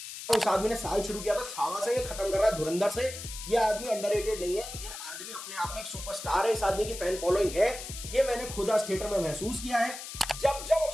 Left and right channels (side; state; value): left; noise; hiss, 10 dB below the sound